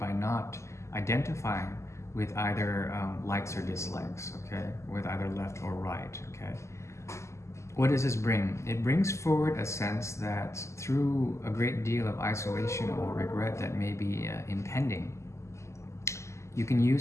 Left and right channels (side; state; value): right; late; 0.13 ms